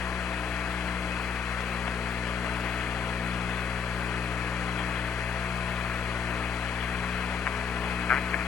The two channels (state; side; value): quieter; right; 6.6 dB